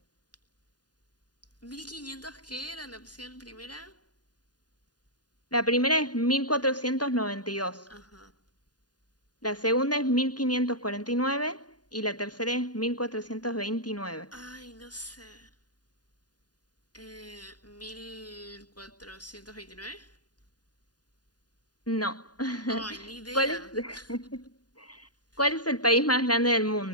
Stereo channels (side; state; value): right; late; 0.69 ms